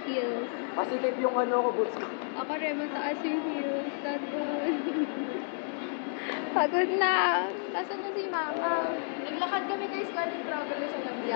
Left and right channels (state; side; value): silent; right; digital silence